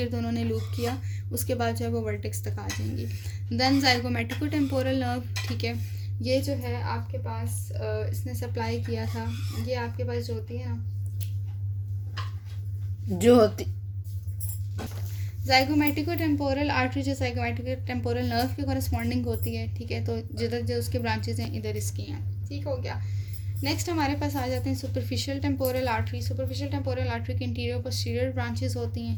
उन्होंने लूप किया, उसके बाद जो है वो वर्टेक्स तक आ जाएंगी। देन जाइगोमेटिको टेम्पोरल नर्व, ठीक है, ये जो है आपके पास इसने सप्लाई किया था, ये आपके पास जो होती है ना जो होती जाइगोमेटिको टेम्पोरल आर्टरी जो जाइगोमेटिको टेम्पोरल नर्व के कॉरस्पॉन्डिंग होती है, ठीक है, तो जिधर जो उसके ब्रांचेस हैं इधर इसकी हैं, ठीक हो गया। नेक्स्ट हमारे पास आ जाते हैं superficial temporal artery. Superficial temporal artery के इंटीरियर पोस्टीरियर ब्रांचेस होती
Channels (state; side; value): identical; both; correlation 1.00